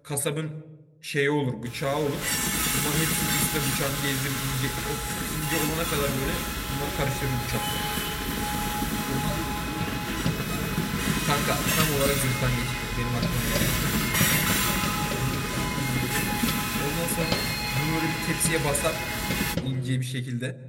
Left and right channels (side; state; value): both; identical; correlation 1.00